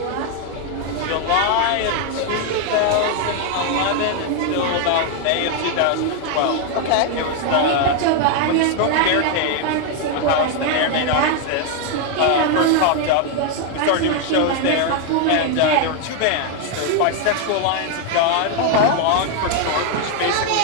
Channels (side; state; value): both; different; correlation 0.01